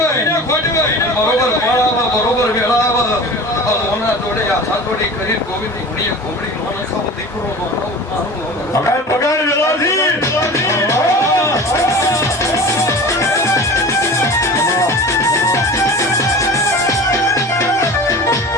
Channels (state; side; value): normal; both; correlation 0.36